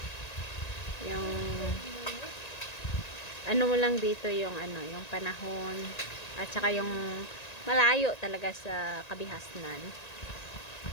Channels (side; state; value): right; late; 1.9 ms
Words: Yung ano mo lang dito yung ano, yung panahon at saka yung malayo talaga sa kabihasnan.